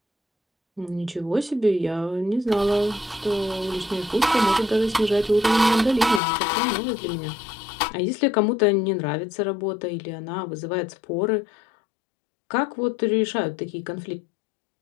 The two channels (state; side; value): drops out; right; at 6.2 s